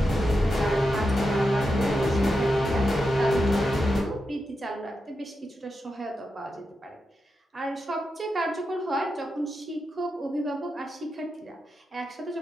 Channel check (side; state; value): both; normal; correlation 0.88